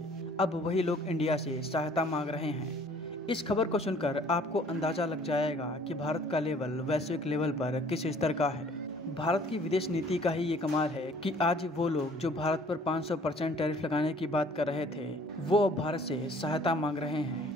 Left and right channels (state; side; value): normal; both; correlation 0.55